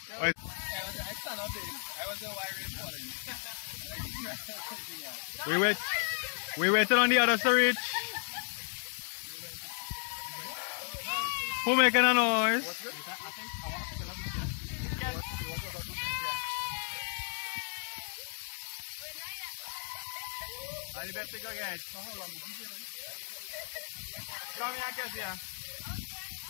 Wait. I stand up there. I was the why rain falling. We waited on the others to reach. Who making a noise? I better go get. Come here, Kezia.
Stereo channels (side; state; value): right; silent; 55 dB below the other